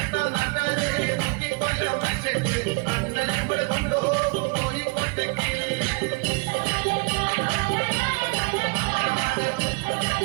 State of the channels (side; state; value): left; quieter; 29.7 dB